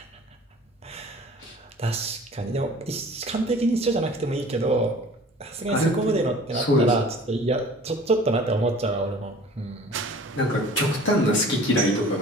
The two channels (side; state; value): both; normal; correlation 0.46